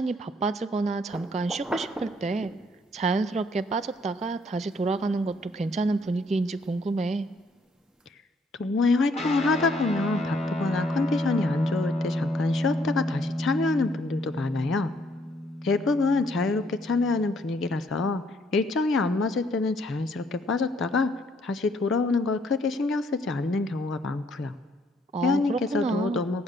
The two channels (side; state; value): both; normal; correlation 0.67